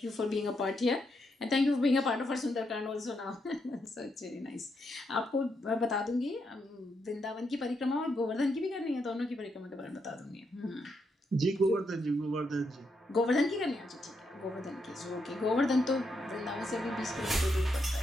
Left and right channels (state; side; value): normal; both; correlation 0.80